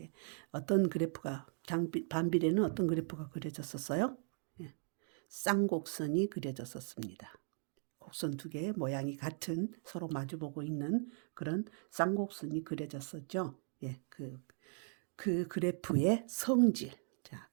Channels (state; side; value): silent; left; 52 dB below the other